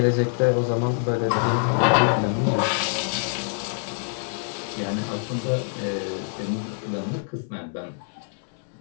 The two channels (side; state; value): right; silent; digital silence